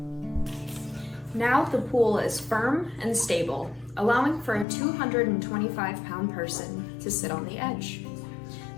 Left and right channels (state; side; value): drops out; right; at 4.7 s